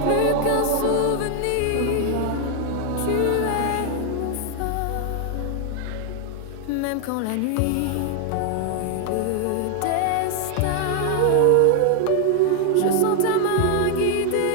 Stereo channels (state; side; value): different; both; correlation 0.00